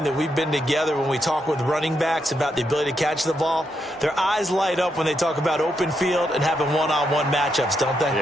that we've been together, when we talk with running backs about the ability to catch the ball, their eyes light up when they talk about open field and having one-on-one matchups, don't they?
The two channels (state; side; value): normal; both; correlation 0.81